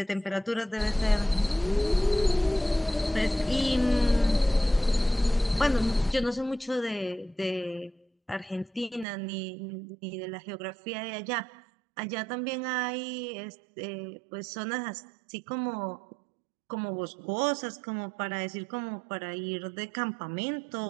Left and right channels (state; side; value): drops out; left; at 9.1 s